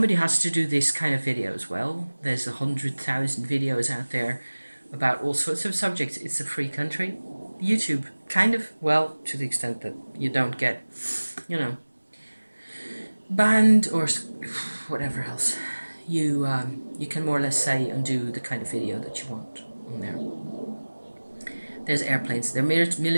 has to do this kind of video as well. There's 100,000 videos out there about all sorts of subjects. It's a free country. YouTube, kind of, well, to the extent that you don't get, banned or whatever else. You can more or less say and do the kind of video that you want on there. There's airplanes. They're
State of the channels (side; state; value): both; inverted; correlation -1.00